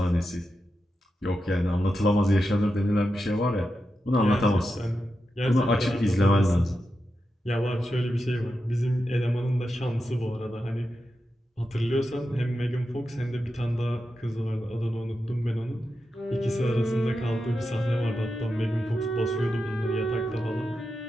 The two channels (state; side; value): normal; both; correlation 0.89